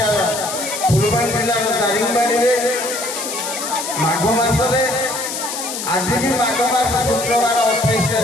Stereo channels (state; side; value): noise; left; hiss, 6 dB below the sound